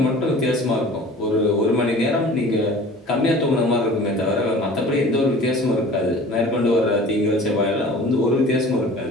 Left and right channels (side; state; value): both; normal; correlation 0.44